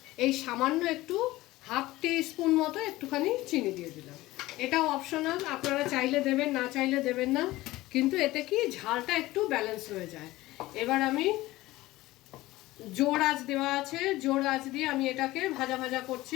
এই সামান্য একটু হাফ টি-স্পুন মতো একটুখানি চিনি দিয়ে দিলাম। এটাও অপশনাল, আপনারা চাইলে দেবেন, না চাইলে দেবেন না, কিন্তু এতে কি ঝালটা একটু ব্যালেন্স হয়ে যায়। এবার আমি জোর আঁচ দেওয়া আছে, জোর আঁচ দিয়ে আমি এটাকে ভাজা ভাজা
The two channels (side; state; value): right; quieter; 18.0 dB